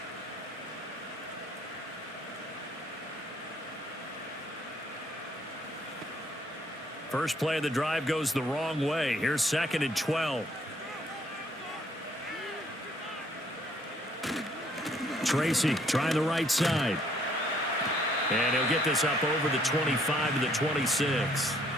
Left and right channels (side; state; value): both; normal; correlation 0.65